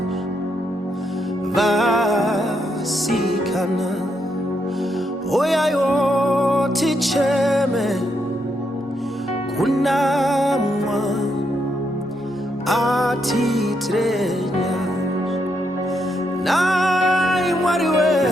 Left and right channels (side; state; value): both; normal; correlation 0.79